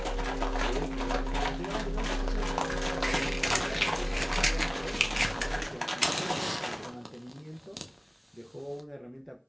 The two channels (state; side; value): identical; both; correlation 1.00